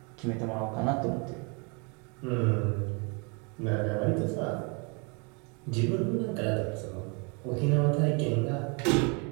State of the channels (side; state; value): left; quieter; 33.0 dB